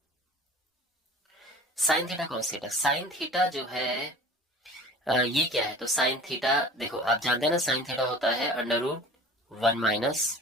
sign theta cos theta, sine theta जो है ये क्या है, तो साइन थीटा देखो आप जानते हैं ना, साइन थीटा होता है √1 माइनस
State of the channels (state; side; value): normal; both; correlation 0.43